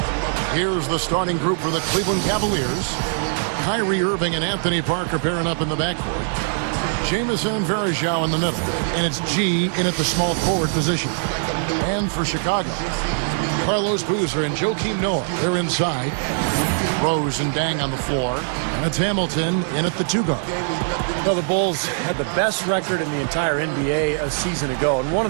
Here's the starting group for the Cleveland Cavaliers. Kyrie Irving and Anthony Parker pairing up in the backcourt. Jamison and Varejao in the middle. And it's G in at the small forward position. And for Chicago, Carlos Boozer and Joakim Noah, they're inside. Rose and Dang on the floor. And it's Hamilton in at the 2 guard. Well, the Bulls had the best record in the entire NBA a season ago, and one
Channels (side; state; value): left; silent; digital silence